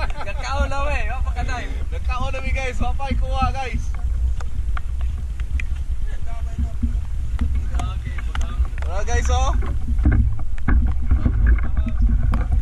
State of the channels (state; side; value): identical; both; correlation 1.00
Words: Gakaon na we, wa pa ka-dive. Nagkaon na mi guys, wa pa ikuha guys. Tara guys oh.